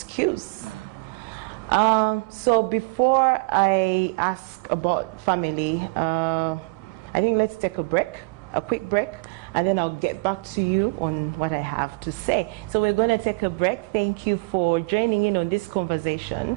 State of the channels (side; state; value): left; quieter; 29.2 dB